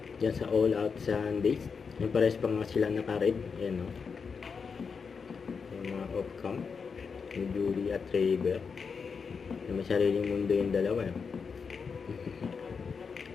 Diyan sa All Out Sundays. Yung pares pa nga sila naka-red. Ayan o. Yung mga off-cam. Yung Julie at Ray Bear. May sariling mundo yung dalawa.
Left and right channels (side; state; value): right; quieter; 5.6 dB